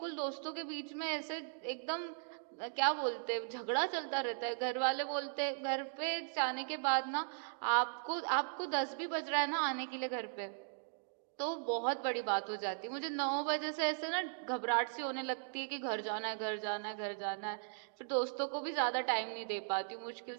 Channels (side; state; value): left; silent; digital silence